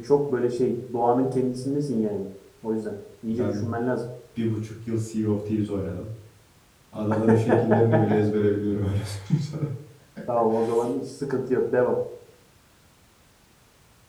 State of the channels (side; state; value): both; identical; correlation 1.00